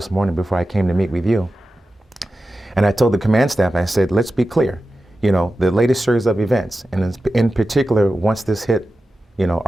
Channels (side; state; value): both; normal; correlation 0.93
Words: morning before I came to meet with you. And I told the command staff, I said, let's be clear. The latest series of events, and in particular, once this hit,